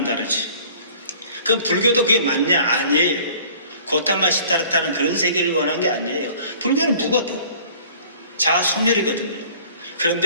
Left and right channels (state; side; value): inverted; both; correlation -0.51